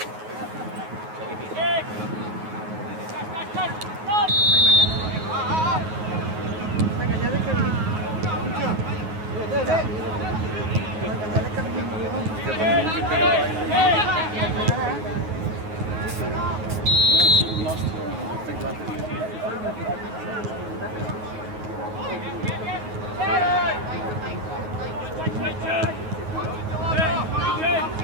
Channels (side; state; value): left; late; 9.4 ms